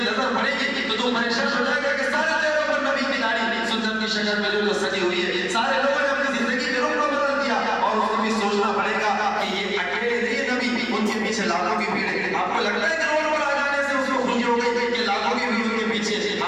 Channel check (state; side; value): noise; right; hum, 25 dB below the sound